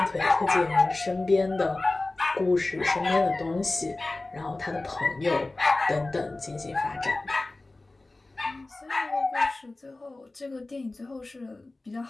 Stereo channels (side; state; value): right; quieter; 3.0 dB